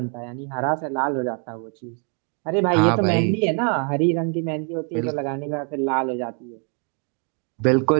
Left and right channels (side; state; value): left; quieter; 38.7 dB